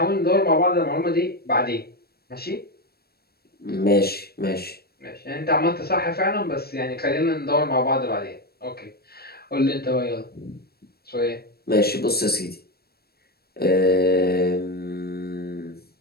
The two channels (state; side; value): late; right; 0.46 ms